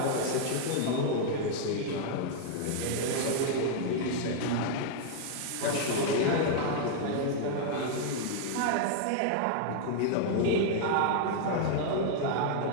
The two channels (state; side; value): different; both; correlation -0.01